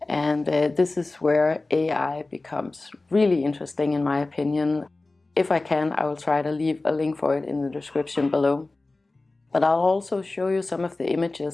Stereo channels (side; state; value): right; quieter; 3.2 dB